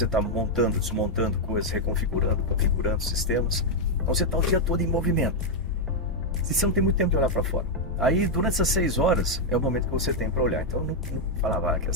está montando, desmontando coisas, reconfigurando, configurando sistemas. Então, você está o dia todo em movimento. E você não tem muito tempo de olhar para fora. Aí, durante essas 6 horas, é o momento que você tem para olhar. Então, eu não falava, quer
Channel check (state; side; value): normal; both; correlation -0.01